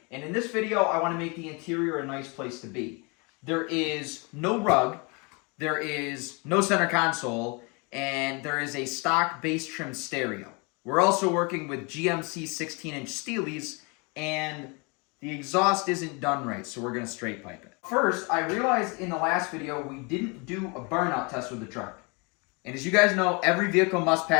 And in this video, I want to make the interior a nice place to be. There is no rug, there is no center console, and there is a stock bass trim stereo. We're also working with GMC 16-inch Steelies, and the exhaust isn't done right, so we're going to straight pipe it. First, I realized in the last video we didn't do a burnout test with the truck. And as you guys know, every vehicle must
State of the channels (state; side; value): quieter; right; 30.7 dB